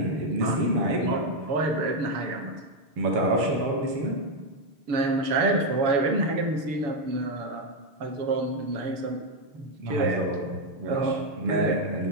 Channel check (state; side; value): late; left; 6.6 ms